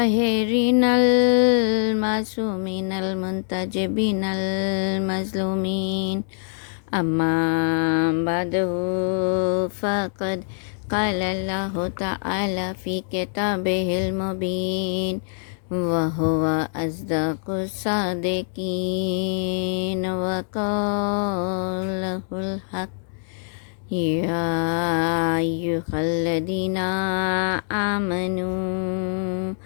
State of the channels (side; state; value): right; silent; 63 dB below the other